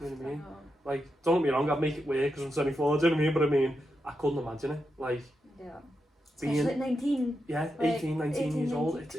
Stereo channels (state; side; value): normal; both; correlation 0.86